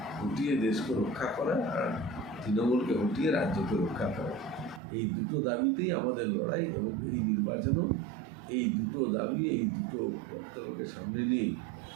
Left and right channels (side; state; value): left; drops out; at 4.8 s